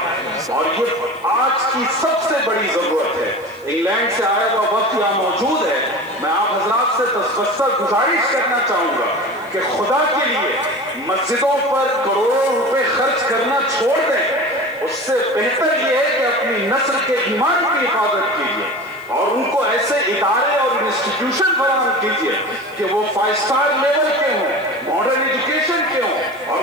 اور یہ آج کی سب سے بڑی ضرورت ہے. انگلینڈ سے آیا ہوا وقت یہاں موجود ہے. میں آپ حضرات سے تسبسر گزارش کرنا چاہوں گا کہ خدا کے لیے مسجدوں پر کروڑوں روپے خرچ کرنا چھوڑ دیں. اس سے بہتر یہ ہے کہ اپنی نسل کے ایمان کی حفاظت کیجیے اور ان کو ایسے ادارے اور انسٹیٹیوشن فراہم کیجیے کہ وہ 5 اسٹار لیول کے ہوں، ماڈرن ایجوکیشن کے ہوں، اور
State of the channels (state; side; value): noise; left; hiss, 28 dB below the sound